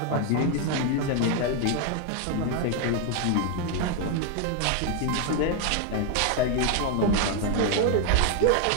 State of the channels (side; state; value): both; different; correlation 0.01